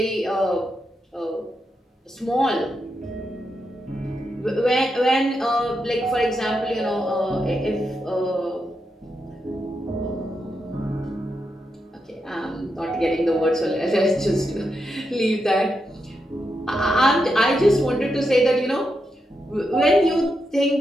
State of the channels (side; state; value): both; normal; correlation 0.85